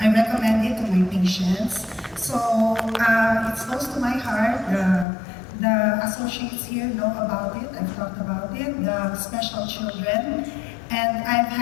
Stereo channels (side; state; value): right; drops out; at 5.1 s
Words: recommend it to my patients. So it's close to my heart. The associates here know about it. I've talked about it. The special children, and I've